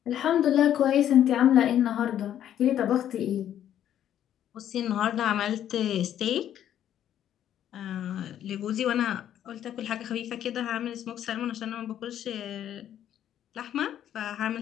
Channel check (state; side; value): quieter; right; 10.7 dB